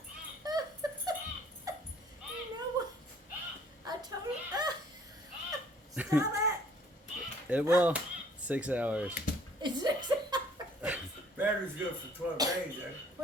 know what? I told him. Stop it! It will. 6 hours. It's 6 hours. Battery's good for 12 days, eh?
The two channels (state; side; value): normal; both; correlation 0.58